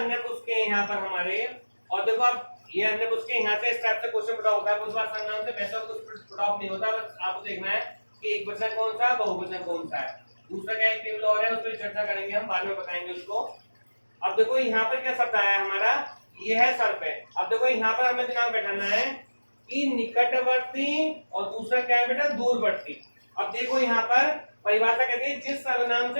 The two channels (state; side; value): inverted; both; correlation -1.00